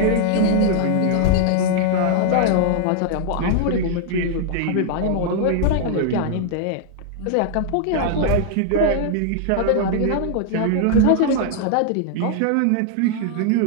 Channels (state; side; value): different; both; correlation -0.01